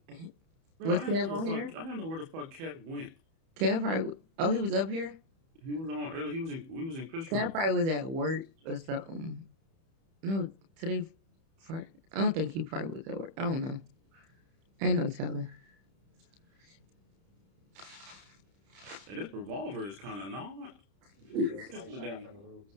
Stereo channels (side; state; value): left; late; 31 ms